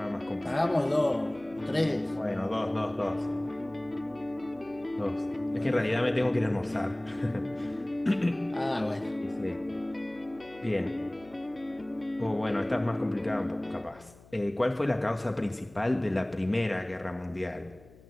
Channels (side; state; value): left; noise; hum, 24 dB below the sound